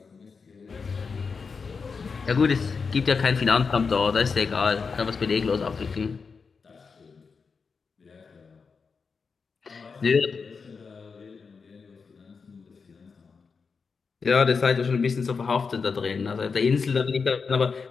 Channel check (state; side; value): quieter; right; 5.2 dB